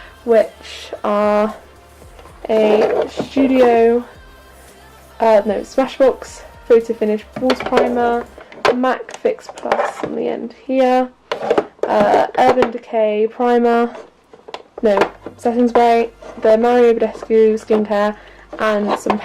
which are a Studio, Smashbox Photo Finish Water Primer, MAC Fix Plus on the end here, Urban Decay Primer, setting spray, the Mario Badescu skincare, and some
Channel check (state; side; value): identical; both; correlation 1.00